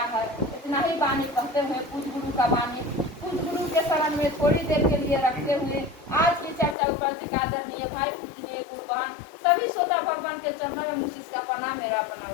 है। इतना ही वाणी कहते हुए पूज गुरु का वाणी पूज गुरु के शरण में थोड़ी देर के लिए रखते हुए आज की चर्चा उपस्थित आदरणीय भाई पूजनीय गुरु बहन सभी श्रोता भगवान के चरणों में मुझ का प्रणाम मेरा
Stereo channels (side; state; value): right; drops out; at 6.8 s